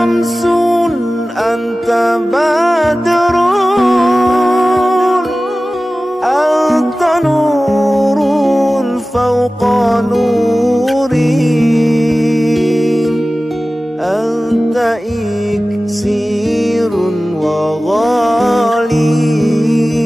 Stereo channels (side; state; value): both; normal; correlation 0.96